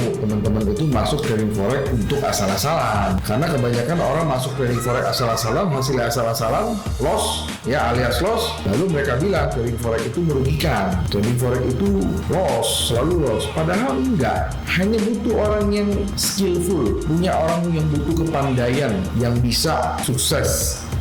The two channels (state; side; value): identical; both; correlation 1.00